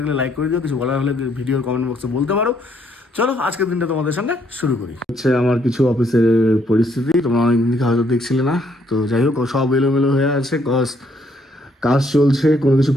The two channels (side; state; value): both; normal; correlation 0.69